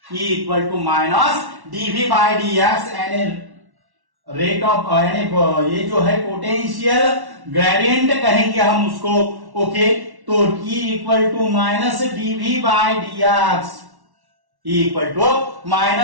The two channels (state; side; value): late; left; 1.1 ms